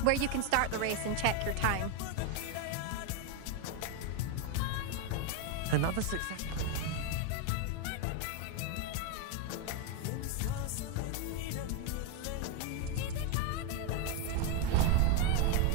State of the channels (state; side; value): different; both; correlation 0.02